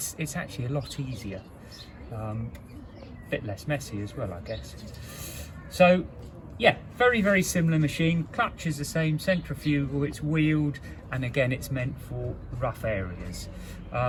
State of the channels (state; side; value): identical; both; correlation 1.00